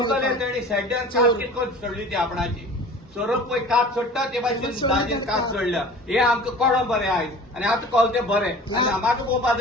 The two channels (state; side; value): normal; both; correlation 0.42